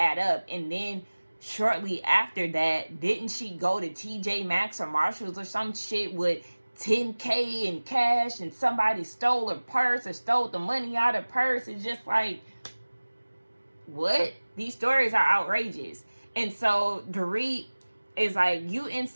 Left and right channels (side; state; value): both; inverted; correlation -1.00